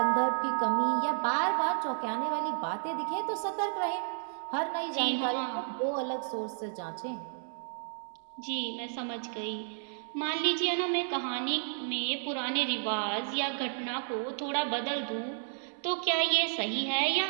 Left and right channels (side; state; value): left; silent; digital silence